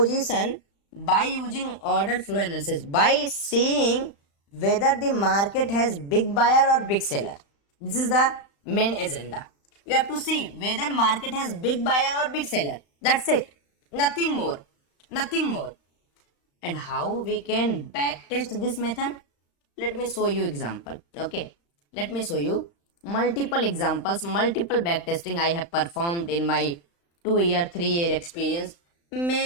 by using order flow analysis, by seeing whether the market has big buyer or big seller. This is the main agenda. You have to see whether market has big buyer or big seller. That's it, nothing more, nothing more. And how we can backtest this method? Let me show you example, okay. Let me show you multiple examples, multiple backtesting I have performed in my 2-year 3-year experience.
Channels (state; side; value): late; right; 35 ms